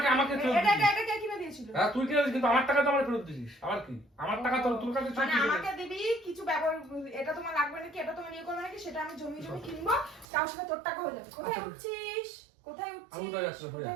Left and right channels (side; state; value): left; drops out; at 10.2 s